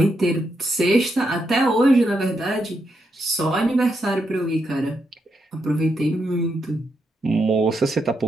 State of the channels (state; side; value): normal; both; correlation 0.81